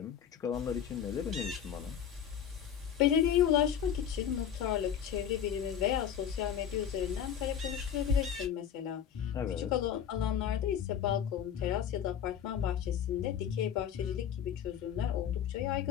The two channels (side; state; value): right; quieter; 8.9 dB